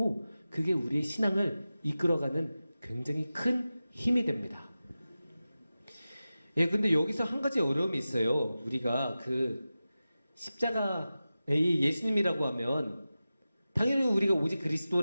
그게 우리의 신앙을 이끌어가는 굉장히 큰 힘이 됩니다. 예, 근데 여기서 한 가지 어려움이 있어요. 우리가 그 십자가의 예수님이라고 하면 당연히 우리가 오직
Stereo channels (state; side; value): inverted; both; correlation -0.94